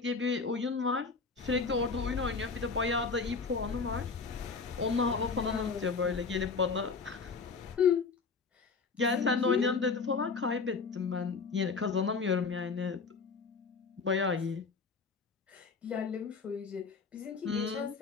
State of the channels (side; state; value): right; quieter; 4.7 dB